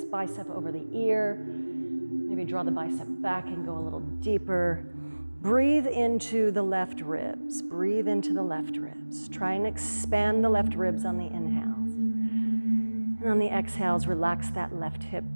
bicep over the ear. Maybe draw the bicep back and go a little deeper. Breathe into the left ribs. Breathe into the left ribs. Try and expand the left ribs on the inhales. And on the exhales, relax that left hip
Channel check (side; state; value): both; inverted; correlation -1.00